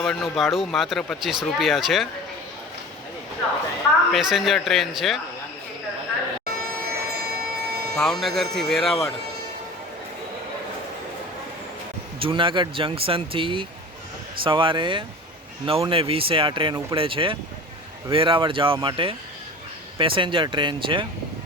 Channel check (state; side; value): normal; both; correlation 0.37